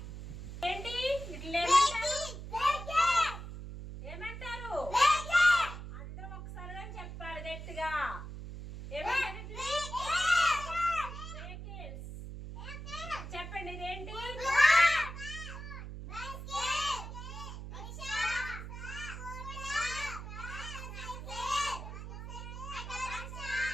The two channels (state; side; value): noise; right; hum, 9 dB below the sound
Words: ఏంటి ఇట్లా ఏమంటారు? అందరూ ఒకసారిగా చెప్పాలి గట్టిగా. చెప్పండి ఇదేంటి?